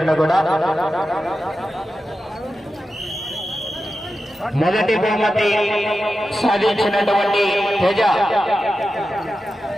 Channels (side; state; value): both; normal; correlation 0.92